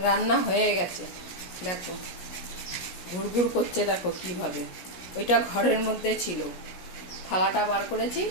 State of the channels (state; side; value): late; right; 17 ms